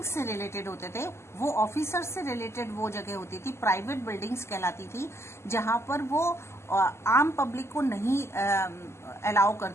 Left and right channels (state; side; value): late; right; 0.13 ms